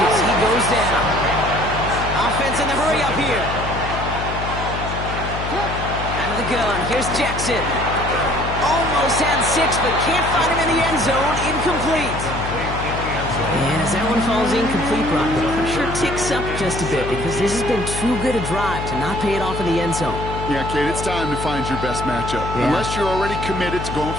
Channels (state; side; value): noise; left; hum, 6 dB below the sound